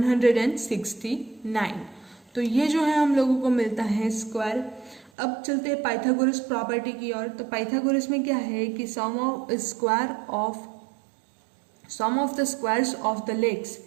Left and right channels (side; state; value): left; drops out; at 5.1 s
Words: तो ये जो है हम लोगों को मिलता है स्क्वायर। अब चलते हैं पाइथागोरस प्रॉपर्टी की ओर। तो पाइथागोरस में क्या है कि sum of the squares of the legs